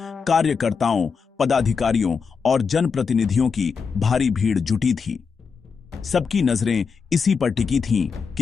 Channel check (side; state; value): right; quieter; 5.6 dB